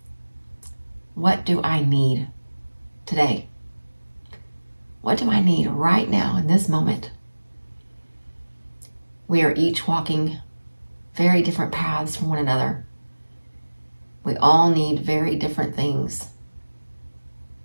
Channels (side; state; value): both; inverted; correlation -1.00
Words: what do I need today? What do I need right now in this moment? We are each walking very different paths from one another. We all need very different things.